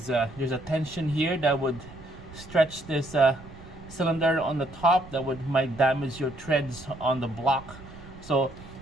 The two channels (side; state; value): right; noise; rumble, 18 dB below the sound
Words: there's a tension here that would stretch this cylinder on the top that might damage your threads on the block. So